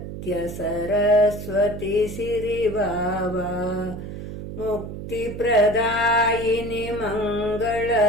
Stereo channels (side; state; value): right; noise; hum, 9 dB below the sound